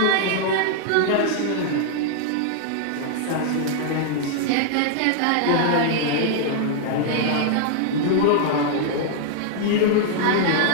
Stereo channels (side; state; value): both; different; correlation -0.01